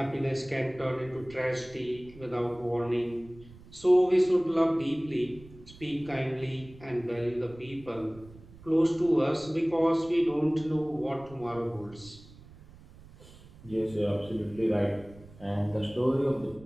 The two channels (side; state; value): right; noise; rumble, 21 dB below the sound